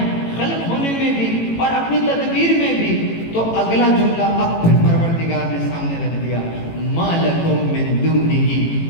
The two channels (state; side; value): late; right; 18 ms